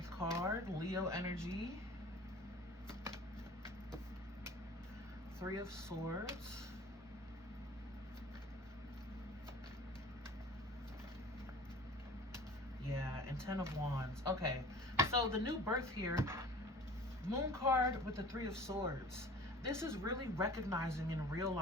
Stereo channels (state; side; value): normal; both; correlation 0.44